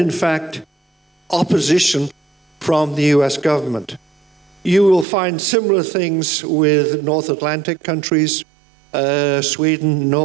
fact, opposition from the US government. You will find similar things with North Atlantic countries, Sweden,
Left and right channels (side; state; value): left; drops out; at 5.1 s